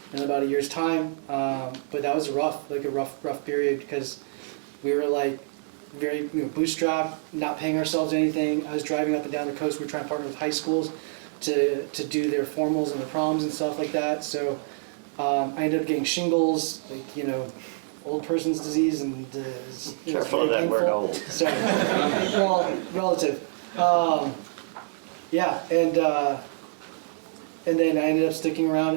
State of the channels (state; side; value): silent; left; digital silence